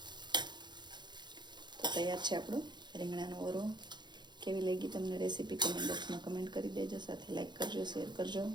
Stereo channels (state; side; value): late; left; 0.21 ms